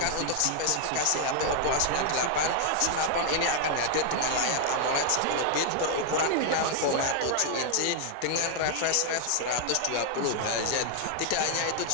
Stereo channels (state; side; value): different; both; correlation 0.00